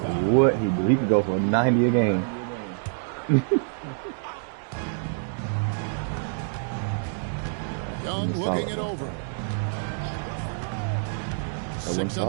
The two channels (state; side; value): silent; left; digital silence